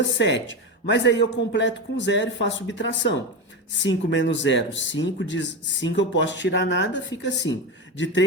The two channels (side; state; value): both; normal; correlation 0.18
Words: Mas aí eu completo com zero e faço subtração. 5 menos 0, 5. De 5 eu posso tirar nada, fica 5. De